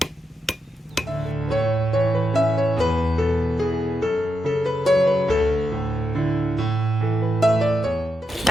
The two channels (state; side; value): normal; both; correlation 0.86